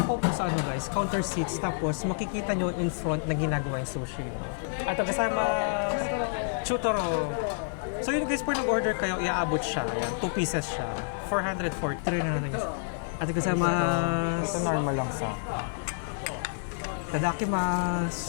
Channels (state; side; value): silent; right; digital silence